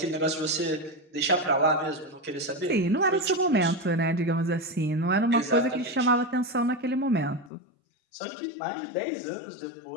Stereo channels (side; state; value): right; drops out; at 7.5 s